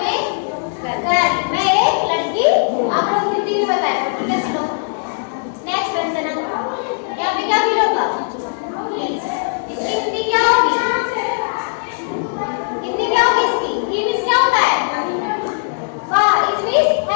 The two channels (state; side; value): silent; right; digital silence